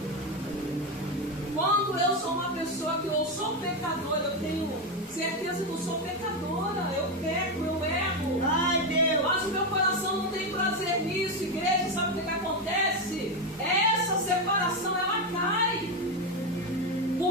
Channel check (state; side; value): normal; both; correlation 0.10